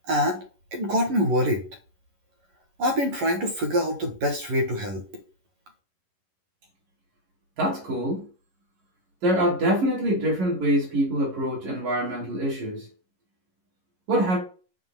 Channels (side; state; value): left; late; 11 ms